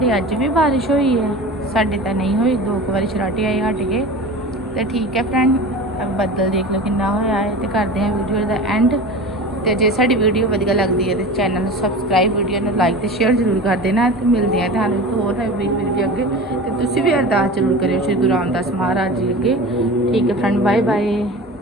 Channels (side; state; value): both; normal; correlation 0.33